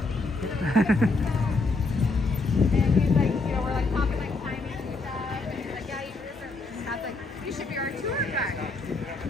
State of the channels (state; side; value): quieter; right; 3.5 dB